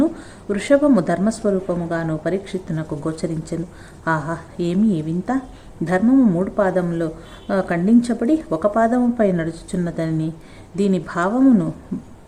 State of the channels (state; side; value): identical; both; correlation 1.00